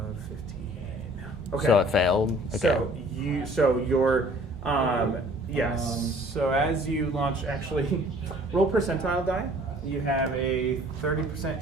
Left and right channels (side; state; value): both; normal; correlation 0.53